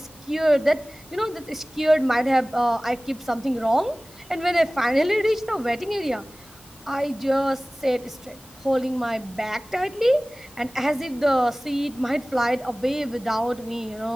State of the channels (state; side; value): normal; both; correlation 0.98